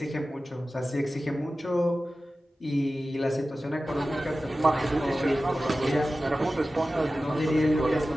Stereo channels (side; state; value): both; normal; correlation 0.95